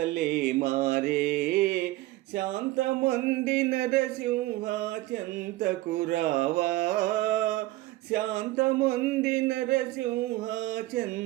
మారే, శాంతమొంది నరసింహ చెంతకు రావా, శాంతమొంది నరసింహ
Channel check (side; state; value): left; quieter; 18.1 dB